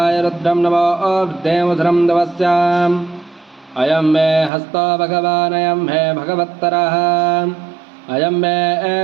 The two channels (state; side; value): drops out; left; at 4.5 s